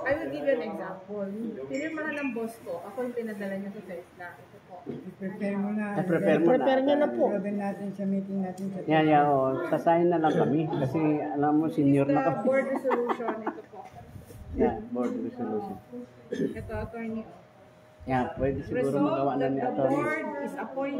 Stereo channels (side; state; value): both; identical; correlation 1.00